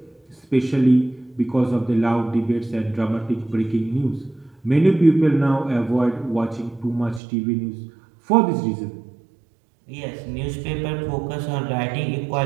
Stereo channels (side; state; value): left; drops out; at 7.2 s